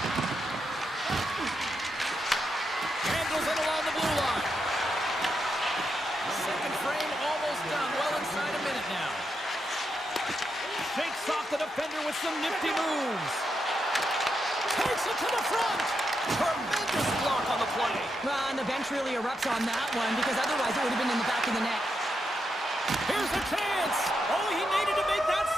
Handles it along the blue line. Second frame almost done. Well inside a minute now. Shakes off the defender with some nifty moves. Takes it to the front. Tremendous block on the play. Well, and the bench really erupts on that one, because otherwise it would have been in the back of the net. Here's a chance. Oh, he needed to make that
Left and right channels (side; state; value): both; normal; correlation 0.84